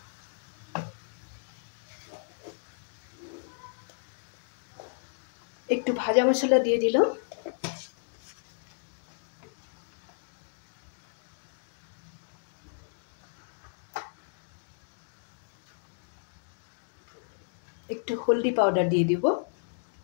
একটু ভাজা মশলা দিয়ে দিলাম, একটু হলদি পাউডার দিয়ে দিব।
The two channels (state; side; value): silent; right; digital silence